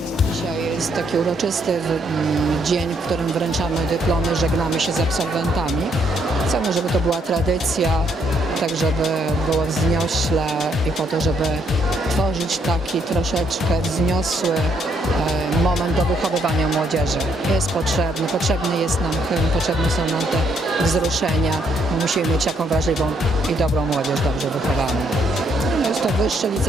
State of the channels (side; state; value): both; normal; correlation 0.71